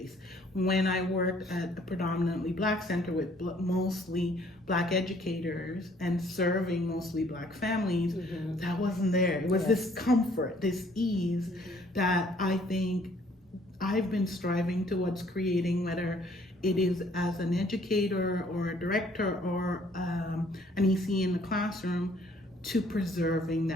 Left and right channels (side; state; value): both; normal; correlation 0.61